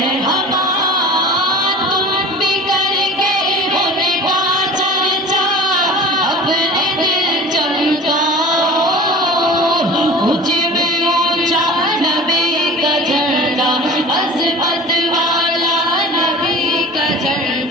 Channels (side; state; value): both; normal; correlation 0.39